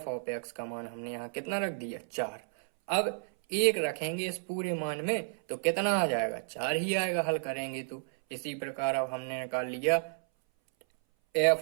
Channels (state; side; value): silent; left; 56 dB below the other